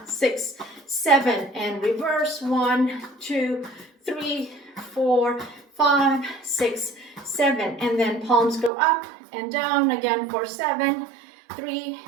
6, 7, and reverse. 1, 2, 3, 4, 5, 6, 7, and then palms go up and down again for 7, 3,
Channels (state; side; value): drops out; left; at 8.7 s